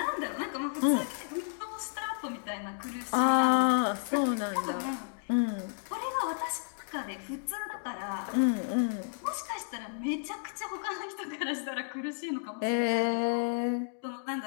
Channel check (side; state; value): right; silent; digital silence